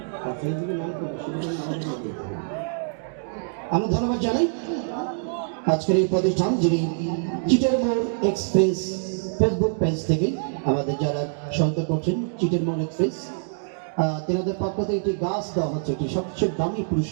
ফেসবুকের নাম কোনটা সেটাকে দিতে হবে। আমরা ধন্যবাদ জানাই আজকের এই প্রতিষ্ঠান, যিনি চিটের মোড় এক্সপ্রেস ফেসবুক পেজ থেকে আমাদের যারা সহায়তা করছেন। চিটের মোড় এক্সপ্রেস তেনাদের পক্ষ থেকে একটি গাছ দেওয়া হচ্ছে, একটি সবচেয়ে দামি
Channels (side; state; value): left; silent; digital silence